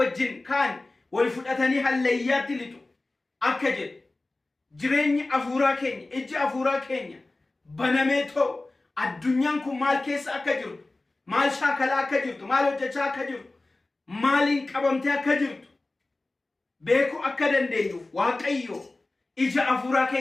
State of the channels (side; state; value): right; quieter; 3.0 dB